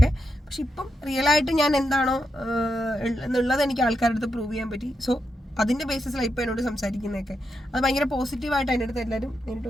പക്ഷെ ഇപ്പം റിയലായിട്ട് ഞാൻ എന്താണോ എന്നുള്ളത് എനിക്ക് ആൾക്കാരുടെ അടുത്ത് പ്രൂവ് ചെയ്യാൻ പറ്റി. സോ അതിന്റെ ബേസിസിലാണ് ഇപ്പൊ എന്നോട് സംസാരിക്കുന്നതൊക്കെ. അത് ഭയങ്കര പോസിറ്റീവായിട്ട് അതിൻ്റെ അടുത്ത് എല്ലാവരും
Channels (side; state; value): both; normal; correlation 0.85